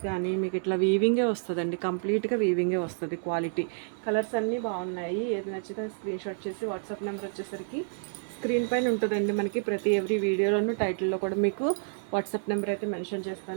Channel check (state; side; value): silent; left; digital silence